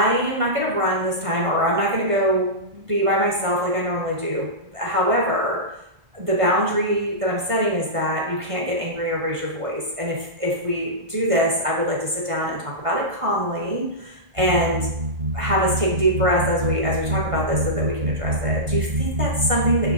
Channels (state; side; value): late; left; 1.5 ms